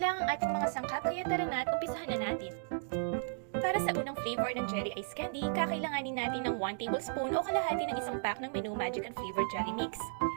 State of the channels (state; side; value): silent; left; digital silence